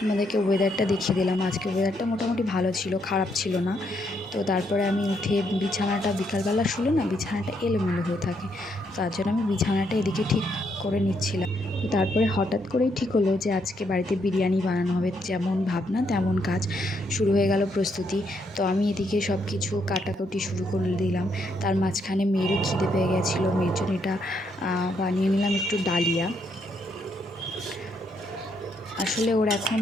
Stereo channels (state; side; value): normal; both; correlation 0.75